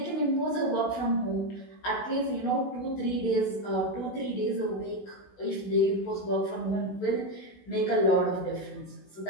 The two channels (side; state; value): right; late; 16 ms